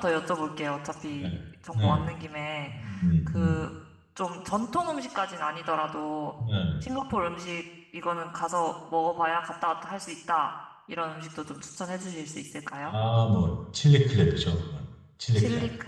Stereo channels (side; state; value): both; identical; correlation 1.00